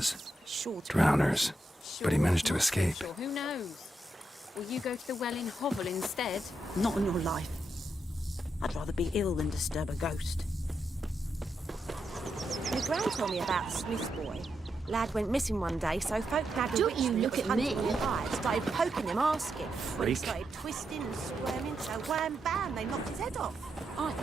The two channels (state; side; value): normal; both; correlation 0.84